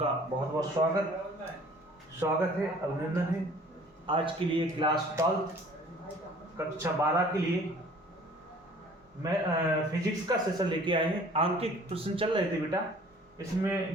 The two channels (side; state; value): both; normal; correlation 0.51